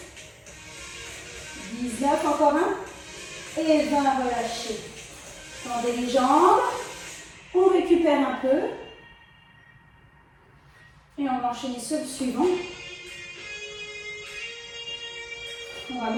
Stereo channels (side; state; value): both; identical; correlation 1.00